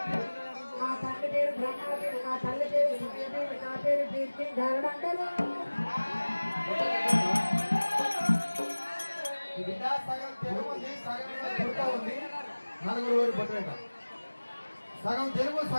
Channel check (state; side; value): inverted; both; correlation -1.00